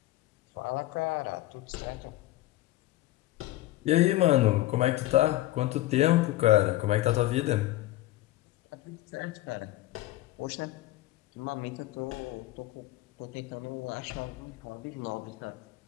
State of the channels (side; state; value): right; quieter; 16.3 dB